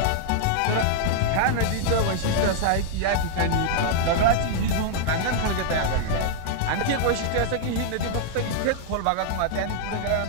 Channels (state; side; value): different; both; correlation -0.01